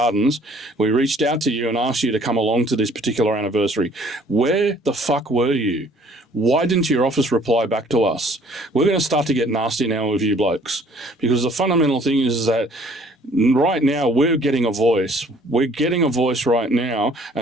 We reached out to you and asked you to come along to this particular anniversary. Where the fuck were you? Why didn't your office reply back to us? We're going to start to get nasty now with you blokes, because the fundamental thing is that right now we're getting a voice. We're getting a voice right now,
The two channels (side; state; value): both; normal; correlation 0.57